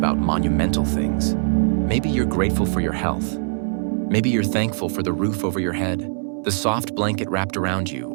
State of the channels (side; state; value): left; silent; digital silence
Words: monumental things. Maybe you're grateful for your health. Maybe you're thankful for the roof over your head, the soft blanket wrapped around you,